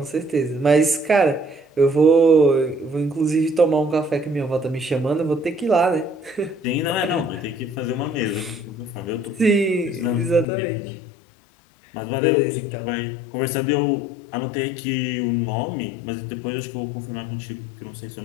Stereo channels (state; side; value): drops out; right; at 10.5 s